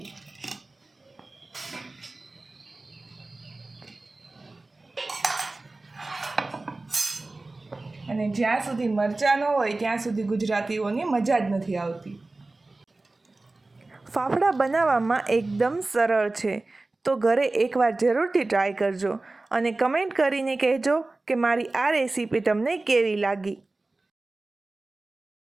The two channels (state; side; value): quieter; left; 3.1 dB